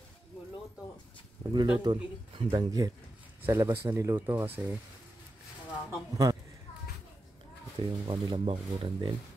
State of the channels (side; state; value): both; normal; correlation 0.89